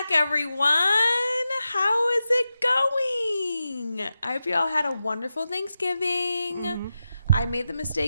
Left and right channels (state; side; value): inverted; both; correlation -0.91